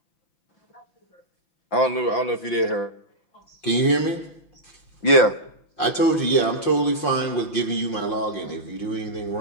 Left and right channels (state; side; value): late; right; 5.6 ms